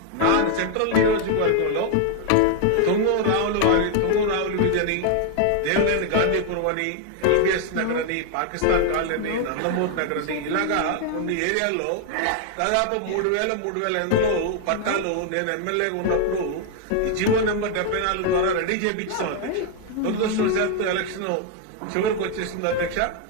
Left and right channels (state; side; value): different; both; correlation 0.00